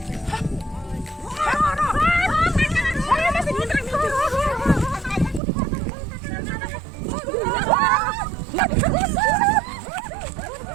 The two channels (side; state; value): left; drops out; at 5.4 s